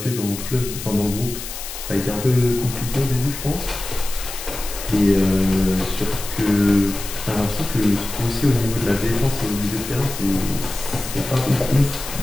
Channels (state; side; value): noise; left; hiss, 9 dB below the sound